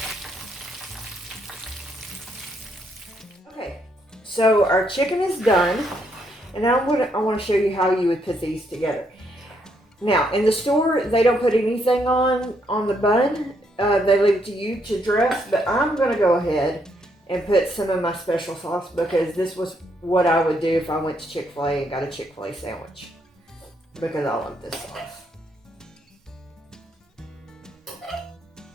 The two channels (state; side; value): normal; both; correlation 0.74